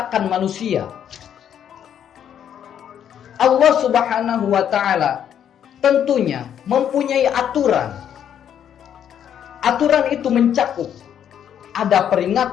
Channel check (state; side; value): quieter; right; 9.3 dB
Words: manusia. Allah subhanahu wa ta'ala tentunya mempunyai aturan. Aturan itu mencakup ada